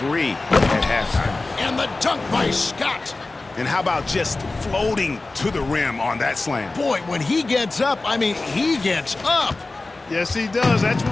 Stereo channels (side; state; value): right; quieter; 3.3 dB